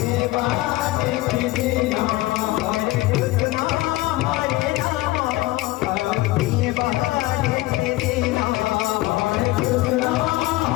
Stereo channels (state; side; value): quieter; right; 18.7 dB